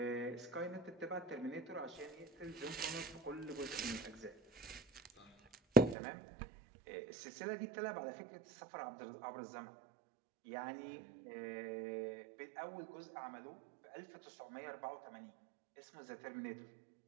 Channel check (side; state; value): left; drops out; at 6.0 s